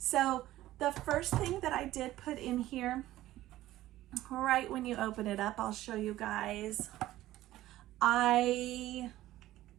the first thing that I did put in here, right when you open it up, I'll show you guys. I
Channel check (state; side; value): quieter; left; 15.1 dB